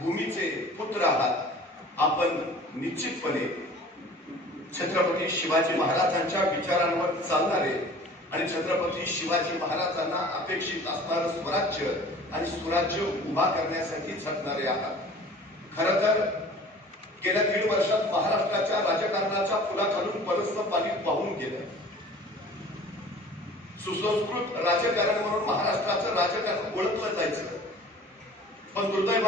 पुत्र आहात. आपण निश्चितपणे छत्रपती शिवाजी महाराजांच्या विचारांवर चालणारे आणि छत्रपती शिवाजी महाराजांना अपेक्षित असणारं स्वराज्य आणि सुराज्य उभा करण्यासाठी झटणारे आहात. खरं तर गेल्या 1.5 वर्षात महाराष्ट्राच्या राजकारणाच्या पुलाखालून बरंचसं पाणी वाहून गेलं. सुसंस्कृत राजकारण म्हणून महाराष्ट्राचं राजकारण ओळखलं जायचं, पण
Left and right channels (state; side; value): normal; both; correlation 0.45